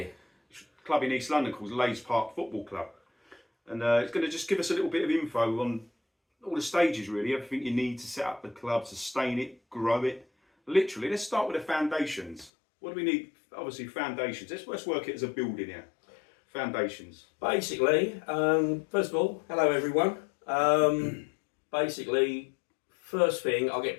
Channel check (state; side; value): drops out; right; at 12.5 s